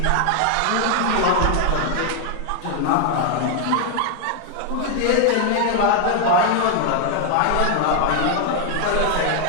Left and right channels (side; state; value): both; different; correlation 0.00